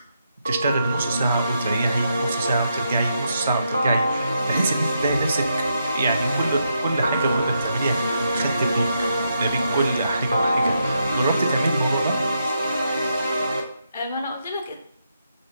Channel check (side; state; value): both; inverted; correlation -0.81